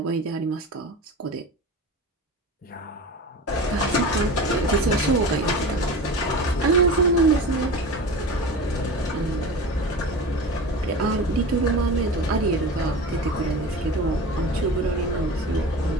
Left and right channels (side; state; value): both; normal; correlation 0.32